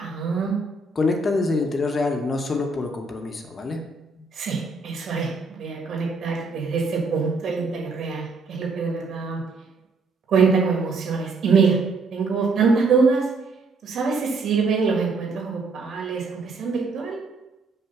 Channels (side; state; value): left; quieter; 3.5 dB